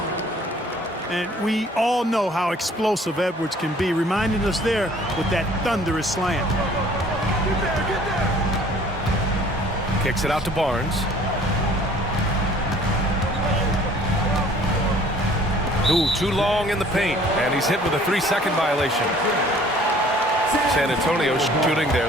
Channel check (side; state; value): both; normal; correlation 0.54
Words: And we all know how explosive Edwards can be, reminding us there with that thunderous slam. Kicks it out to Barnes. Ooh, too long in the paint, and he's hit with a 3-second violation. San Antonio shooting